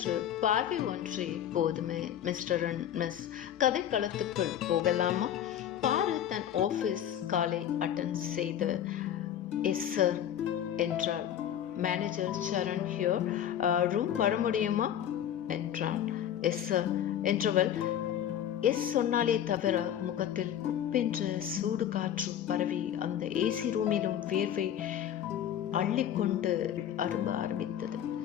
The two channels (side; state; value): right; quieter; 10.3 dB